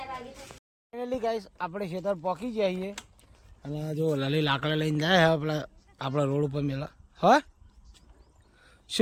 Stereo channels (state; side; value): identical; both; correlation 1.00